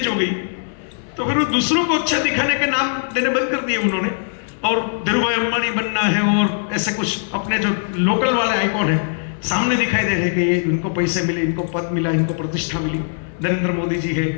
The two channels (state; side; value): silent; right; 59 dB below the other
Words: हो गई, तो फिर वो दूसरों को अच्छा दिखाने के नाम देने बंद कर दिए उन्होंने, और धीरूभाई अंबानी बनना है और ऐसे कुछ अपने जो लोकल वाले आइकॉन है सामने दिखाई दे रहे कि इनको पैसे मिले, इनको पद मिला, इनको प्रतिष्ठा मिली, नरेंद्र मोदी जी है,